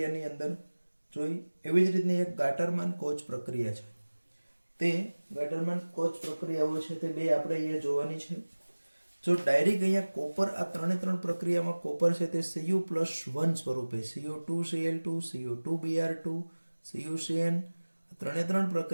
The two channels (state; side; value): inverted; both; correlation -1.00